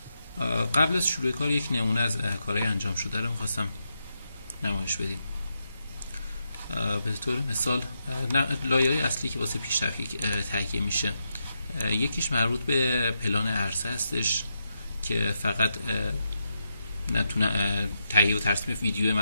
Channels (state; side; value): inverted; both; correlation -0.83